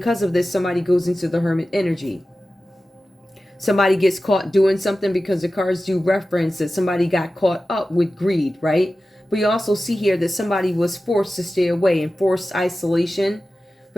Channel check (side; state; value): both; normal; correlation 0.94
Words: of this, somebody goes into the Hermit energy. Somebody gets caught doing something because the cards do reference that somebody got caught up with greed, right? But you also see here that somebody was forced to stay away in forced isolation.